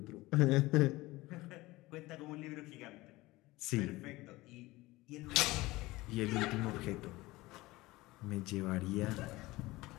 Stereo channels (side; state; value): right; quieter; 19.8 dB